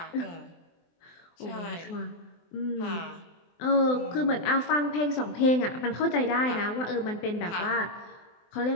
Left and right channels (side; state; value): right; late; 24 ms